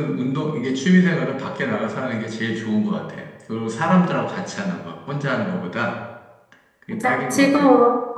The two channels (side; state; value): both; identical; correlation 1.00